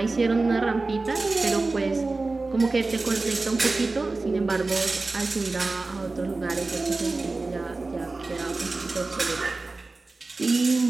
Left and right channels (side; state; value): left; quieter; 3.5 dB